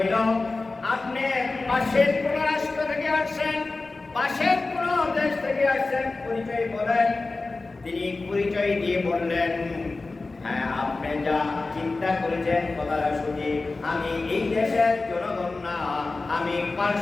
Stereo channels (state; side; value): quieter; right; 3.5 dB